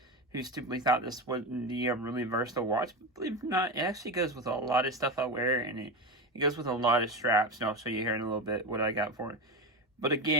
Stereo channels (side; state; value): both; normal; correlation 0.19